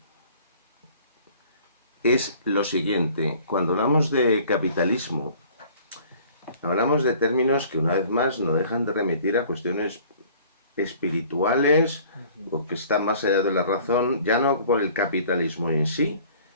es lo siguiente. Cuando hablamos de capitalismo, hablamos de términos que una vez más no dejan de remitir a cuestiones espirituales o que están más allá de la razón, ya no por el capitalismo en sí,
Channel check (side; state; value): both; inverted; correlation -0.51